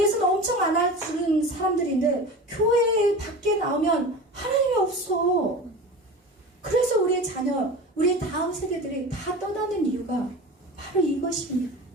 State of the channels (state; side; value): normal; both; correlation 0.33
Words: 엄청 안아주는 사람들인데 교회 밖에 나오면 하나님이 없어. 그래서 우리의 자녀, 우리의 다음 세대들이 다 떠나는 이유가 바로 이것입니다.